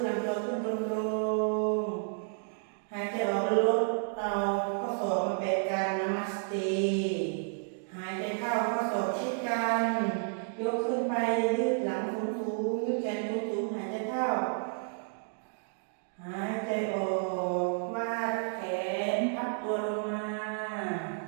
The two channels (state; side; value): silent; left; digital silence